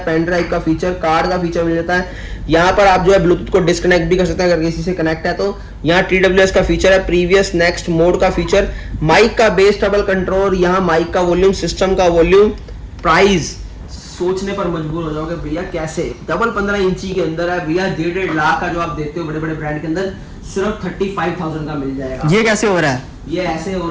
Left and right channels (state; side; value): identical; both; correlation 1.00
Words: पेन ड्राइव का फीचर, कार्ड का फीचर मिल जाता है। यहाँ पर आप जो है ब्लूटूथ को डिस्कनेक्ट भी कर सकते हैं अगर किसी से कनेक्ट है तो। यहाँ TWS का फीचर है, प्रीवियस नेक्स्ट मोड का फीचर, माइक का बेस ट्रबल कंट्रोल, यहाँ माइक का वॉल्यूम, सिस्टम का वॉल्यूम। प्राइस सोचने पर मजबूर हो जाओगे भैया कैसे डबल 15 इंची के अंदर है भैया 1.5 लाख का जो आप देखते हो बड़े बड़े ब्रांड के अंदर सिर्फ 35,000 का मिल जाएगा। ये कैसे हो रहा है? ये ऐसे हो